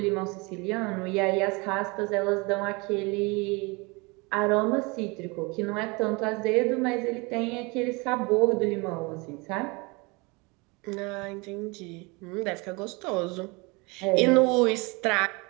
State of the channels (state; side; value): quieter; left; 27.3 dB